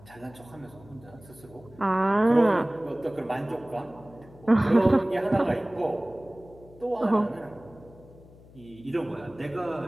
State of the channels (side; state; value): left; noise; hum, 23 dB below the sound